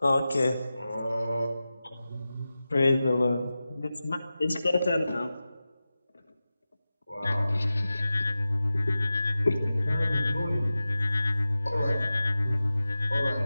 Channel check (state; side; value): inverted; both; correlation -0.95